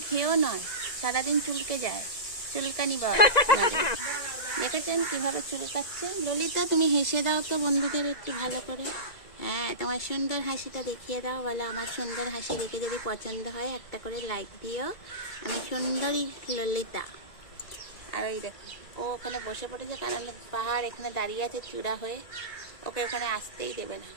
খেয়েও নয়, সারাদিন চুলকে যায়, চুলকানি বল। দেখেছেন কিভাবে চুলকাচ্ছে? ললিতা তুমি হেসে দাও তো বন্ধুদের একটু ভালো করে। হ্যাঁ, তোমার সুন্দর হাসিটা দেখিয়ে দাও, বলো আমার সুন্দর হাসি দেখে যদি পছন্দ হয় একটা করে লাইক দিও। আমি সুন্দরী ললিতা। আর ওই দেখো ও ওখানে বসে পড়েছে, কারণ পাহাড় এখানে দাঁড়িয়ে আছে চূড়া হয়ে, ওকে ওখানে আসতেই দেবে না,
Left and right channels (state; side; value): late; right; 1.9 ms